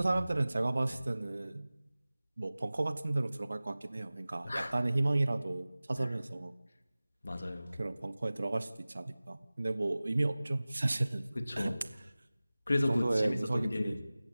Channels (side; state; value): both; inverted; correlation -0.98